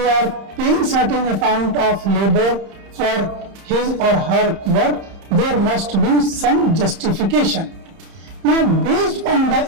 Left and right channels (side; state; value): left; late; 30 ms